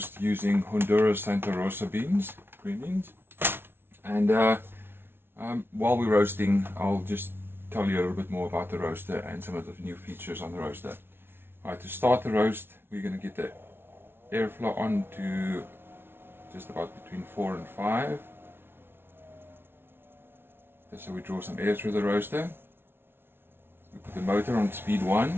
using Honduras Santa Rosa beans, green beans. And while we're roasting, I'll just tell you a little bit more about the roaster and some of the new features on the roaster. Alright, to start the roast, we're going to get the airflow on to just about between 4 and 5. So we draw some air through the roaster. We put the motor on speed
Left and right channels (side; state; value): left; late; 0.11 ms